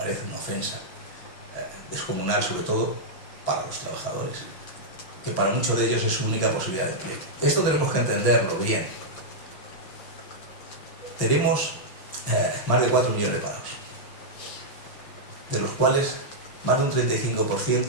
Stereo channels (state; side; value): late; right; 5.8 ms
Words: una ofensa descomunal, sobre todo para los trabajadores, que para muchos de ellos es su única posibilidad de empleo. Esto tenemos que entenderlo bien. Tenemos más de 4 millones de parados, de los cuales más de un